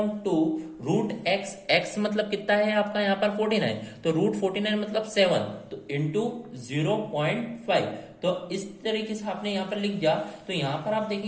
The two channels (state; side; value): identical; both; correlation 1.00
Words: रूट एक्स, एक्स मतलब कितना है आपका यहाँ पर 49, तो रूट 49 मतलब 7, तो इंटू 0.5। तो इस तरीके से आपने यहाँ पर लिख दिया। तो यहाँ पर आप